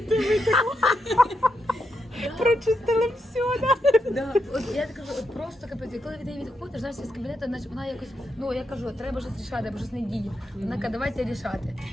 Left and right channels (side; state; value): both; normal; correlation 0.83